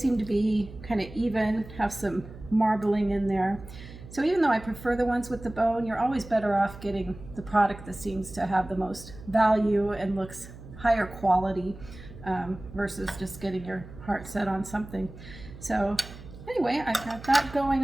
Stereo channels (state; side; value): noise; right; hum, 16 dB below the sound